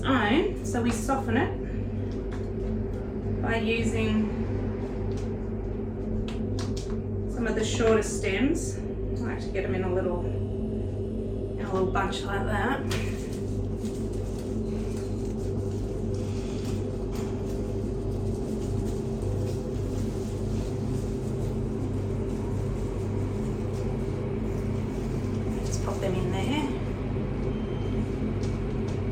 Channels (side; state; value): both; identical; correlation 1.00